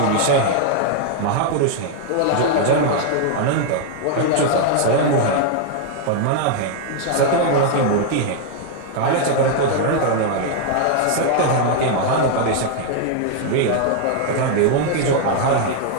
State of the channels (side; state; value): both; different; correlation 0.00